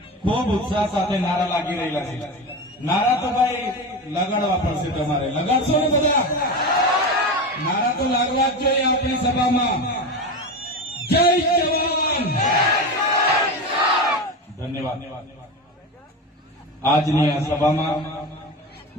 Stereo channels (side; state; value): both; normal; correlation 0.23